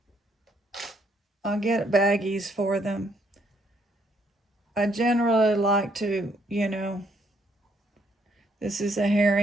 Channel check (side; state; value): both; normal; correlation 0.70